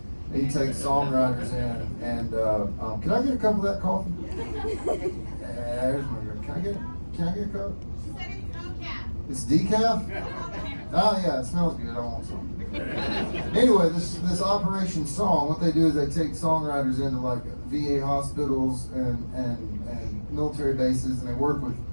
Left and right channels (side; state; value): both; inverted; correlation -1.00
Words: He takes songwriters in, and can I get a cup of that coffee? There's my girl. Can I get a cup? She said it's decaf. It's decaf? Oh yeah, it smells good. I want some. Anyway, this Operation Song, what they do is they take songwriters into like VA hospitals and military bases, and they work with